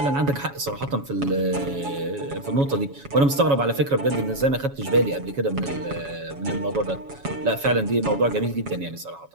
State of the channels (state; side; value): late; left; 7.2 ms